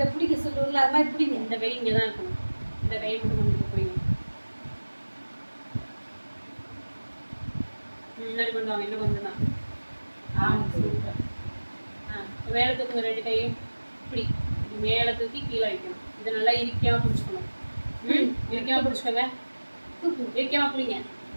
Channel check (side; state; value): both; inverted; correlation -1.00